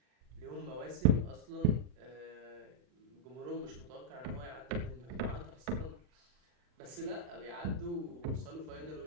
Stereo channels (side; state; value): left; late; 40 ms